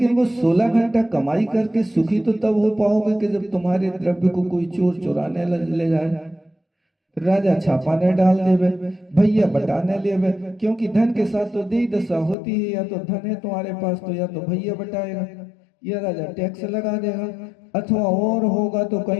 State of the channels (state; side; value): drops out; right; at 12.4 s